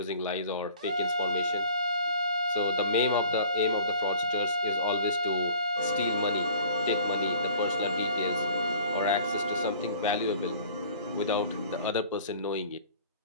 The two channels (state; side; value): inverted; both; correlation -0.50